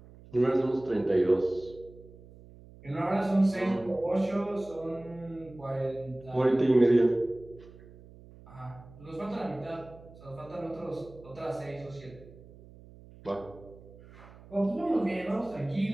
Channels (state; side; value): noise; right; hum, 21 dB below the sound